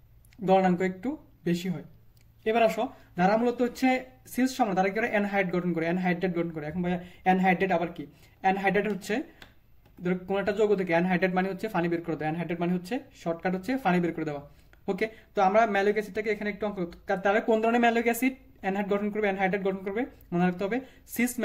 গলনাঙ্ক একটু বেশি হয়। এবার আসো, যারা মূলত হচ্ছে সিস সমান তারা কি করে অ্যানহাইড গঠন করে, অ্যানহাইড্রেট গঠন করে। এখন ভাইয়া অ্যানহাইড্রেট আবার কি? অ্যানহাইড্রেট হচ্ছে কোন একটা যৌগ থেকে অ্যানহাইড্রেট মানে হচ্ছে পানি বের করে দেওয়া, অ্যানহাইড্রেট মানে হচ্ছে শর্টকাট হচ্ছে পানি বের করে দেওয়া। ওকে, তো আমরা ম্যালোইক অ্যাসিডটাকে এখানে একটু অঙ্ক, তাহলে কোন ধরনের ম্যালোইক অ্যাসিড অ্যানহাইড গঠন করবে, অ্যানহাইড্রেট গঠন করবে? মনে রাখতে হবে cis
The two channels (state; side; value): identical; both; correlation 1.00